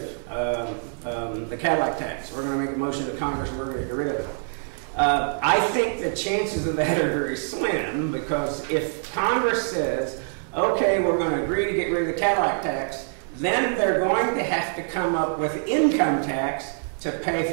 of the Cadillac tax. We're going to make a motion to Congress, we're going to get rid of it. I think the chances of that are very slim, because if Congress says, okay, we're going to agree to get rid of the Cadillac tax, then they're going to have to come up with income tax to pay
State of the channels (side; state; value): left; silent; digital silence